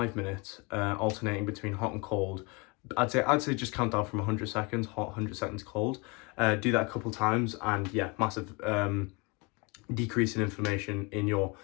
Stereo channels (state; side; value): quieter; right; 28.1 dB